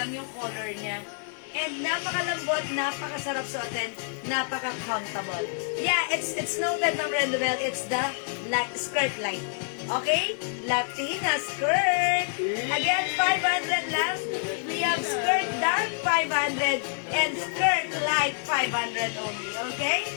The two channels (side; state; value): right; silent; digital silence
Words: yung color niya. And napakalambot, napakasarap suotin, napaka-comfortable. Yeah, it's noted, Ma'am Rendobel. It's the skirt line. Okay? Latina skirt. Again, 500 lang. We have skirt dark, 500. And skirt light, 500 only. Okay?